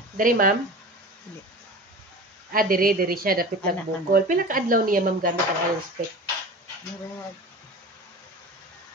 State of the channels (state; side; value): normal; both; correlation 0.35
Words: Diri ma'am? Diri siya dapit nagbukol. Pila ka adlaw niya ma'am gamit ang ayon spec?